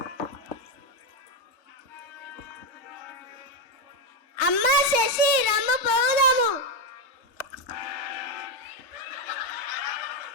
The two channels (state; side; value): normal; both; correlation 0.06